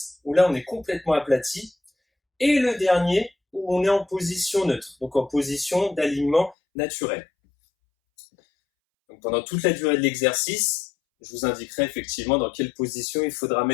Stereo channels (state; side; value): drops out; right; at 6.6 s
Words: où là on est complètement aplati. Et le dernier, où on est en position neutre, donc en position d'alignement naturel. Donc pendant toute la durée de l'exercice, je vous indiquerai effectivement dans quelle position il faudra